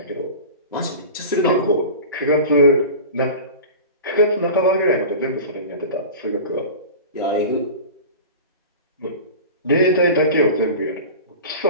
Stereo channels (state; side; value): inverted; both; correlation -0.34